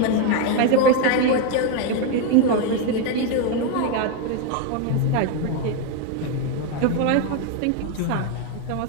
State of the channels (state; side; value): different; both; correlation 0.02